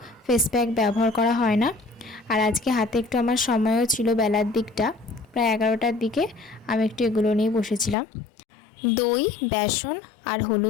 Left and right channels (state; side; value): drops out; right; at 8.0 s